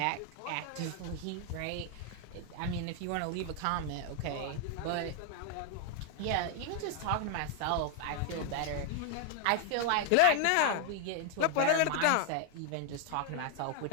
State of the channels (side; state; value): both; different; correlation 0.00